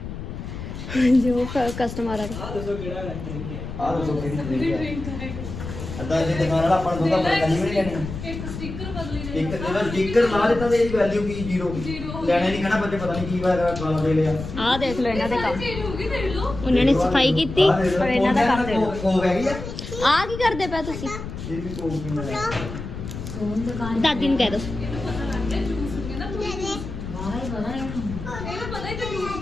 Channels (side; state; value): left; noise; rumble, 8 dB below the sound